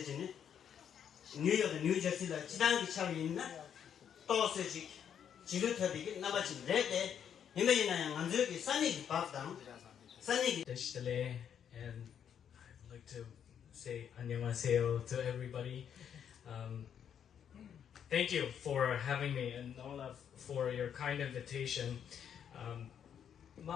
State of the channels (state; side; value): quieter; right; 8.6 dB